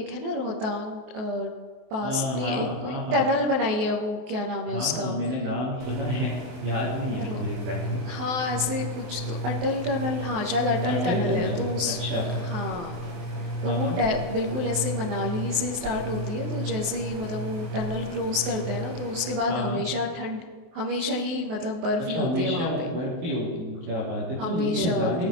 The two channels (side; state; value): left; late; 23 ms